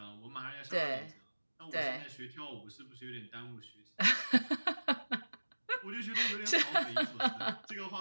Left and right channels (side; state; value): both; inverted; correlation -1.00